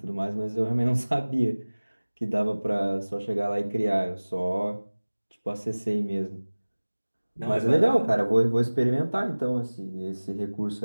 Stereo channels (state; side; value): inverted; both; correlation -1.00